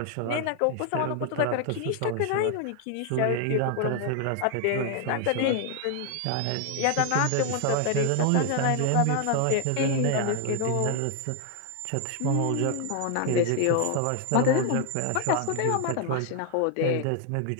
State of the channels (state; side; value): different; both; correlation 0.00